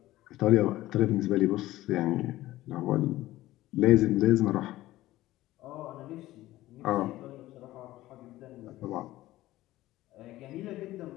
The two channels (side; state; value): right; quieter; 16.2 dB